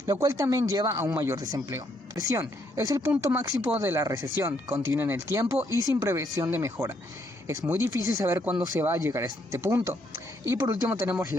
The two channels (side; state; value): both; normal; correlation 0.72